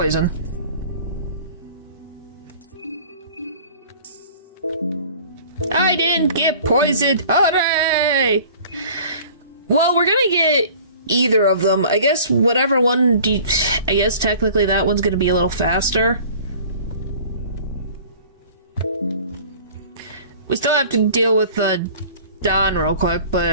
I didn't get poisoned. Hooray! Well, we're gonna get either of them. I guess whatever one I guess technically that one's gonna be a little faster. We still have to deal with Don real quick,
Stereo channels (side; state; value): both; inverted; correlation -0.47